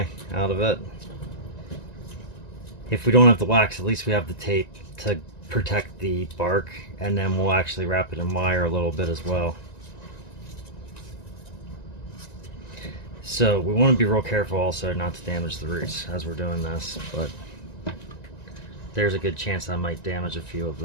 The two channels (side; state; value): right; late; 1.9 ms